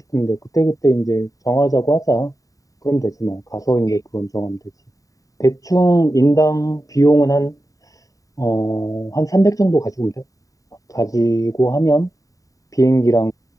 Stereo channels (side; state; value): right; late; 0.16 ms